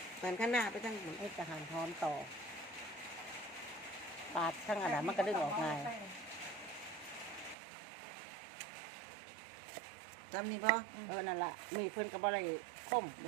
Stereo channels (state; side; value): drops out; left; at 7.6 s